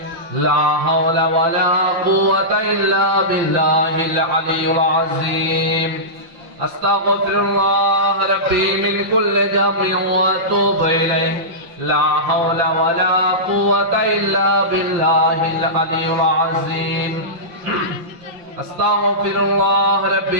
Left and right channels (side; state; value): left; late; 5.6 ms